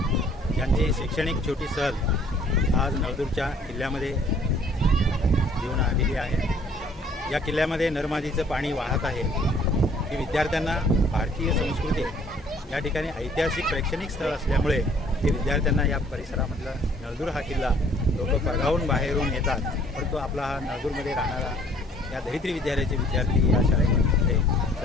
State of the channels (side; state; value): both; normal; correlation 0.58